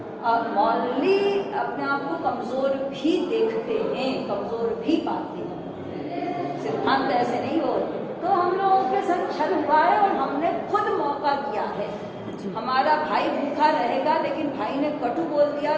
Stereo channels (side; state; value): both; identical; correlation 1.00